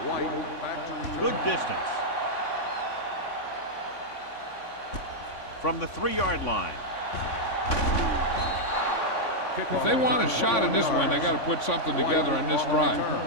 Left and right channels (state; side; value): late; right; 3.5 ms